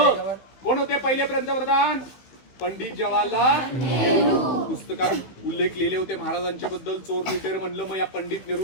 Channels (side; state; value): right; late; 15 ms